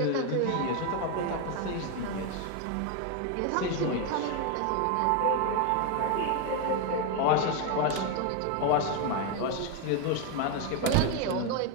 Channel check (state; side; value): different; both; correlation 0.01